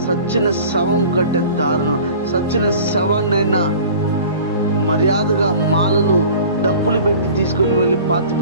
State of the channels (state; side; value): inverted; both; correlation -0.44